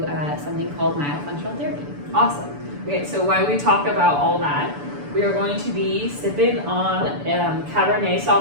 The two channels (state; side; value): late; left; 6.9 ms